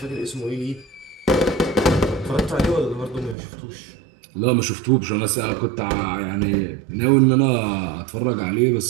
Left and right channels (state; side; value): drops out; left; at 3.4 s